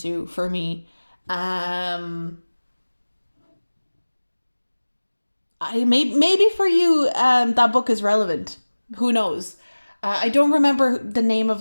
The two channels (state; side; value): inverted; both; correlation -1.00